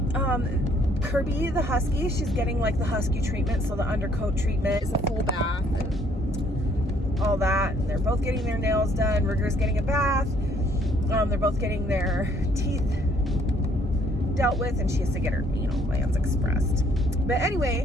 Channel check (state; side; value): normal; both; correlation 0.64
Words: Kirby, the husky, she's getting like the husky treatment, so the undercoat treatment is a full bath and all that. And they're both getting their nails done. Rigger's getting a bath. They're both getting their teeth dealt with, and she has to get her, plans expressed. But